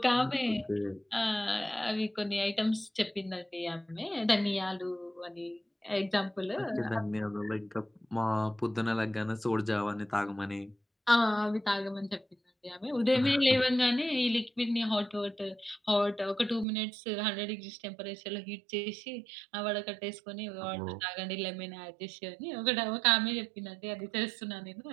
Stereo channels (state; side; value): drops out; left; at 16.7 s